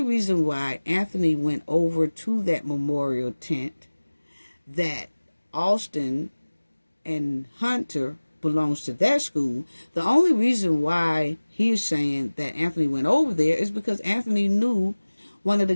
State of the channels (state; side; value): inverted; both; correlation -1.00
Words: reason why Anthony went over to that Memorial tent, that Austin and Hunter belongs to that school, the only reason why he's saying that Anthony went over there is because Anthony knew one of the